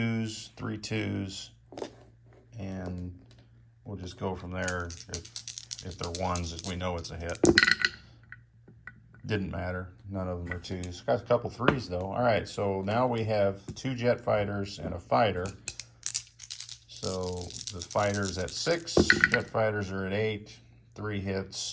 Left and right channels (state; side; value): identical; both; correlation 1.00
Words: 3 2s, and we'll just go from there. If they're ones, we know it's a hit. Didn't matter. None of them are twos. Got a couple threes though. All right, so now we have 2 jet fighters and a fighter. So the fighter's at 6, jet fighters are at 8, 3